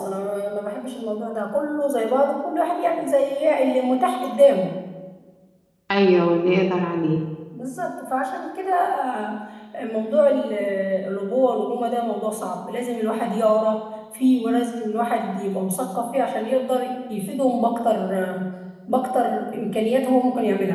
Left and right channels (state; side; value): identical; both; correlation 1.00